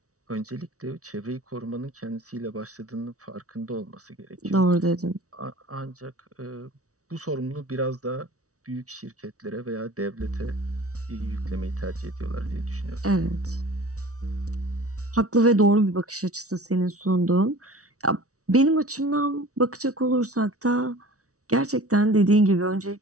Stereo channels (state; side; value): late; left; 0.65 ms